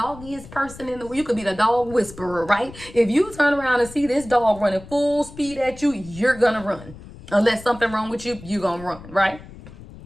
person in the world. You could be the dog whisperer, right? If you turn around and see this dog running full speed at you, you're gonna run. Unless something wrong with you, you're gonna run, right?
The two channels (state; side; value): noise; left; rumble, 17 dB below the sound